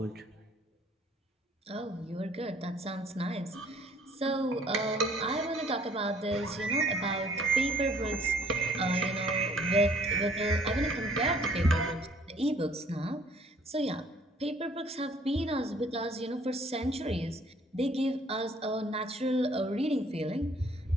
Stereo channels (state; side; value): normal; both; correlation 0.58